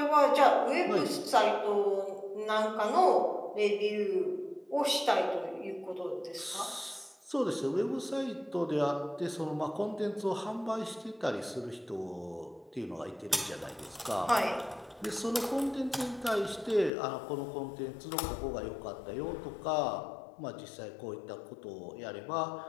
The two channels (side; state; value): right; drops out; at 16.9 s